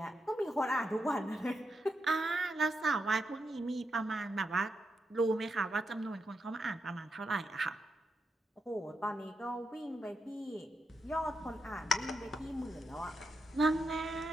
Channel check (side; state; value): both; normal; correlation 0.84